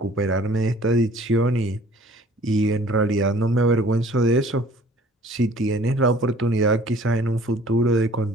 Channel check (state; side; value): normal; both; correlation 0.52